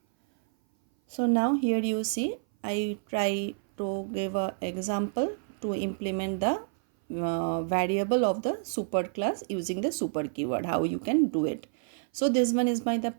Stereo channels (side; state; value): left; silent; 57 dB below the other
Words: So now here you see I try to give an example to implement the variable of the super class using the super keyword, how you can do it. So this one is the